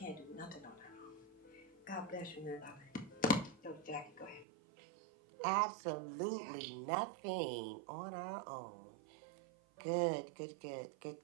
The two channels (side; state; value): left; drops out; at 4.5 s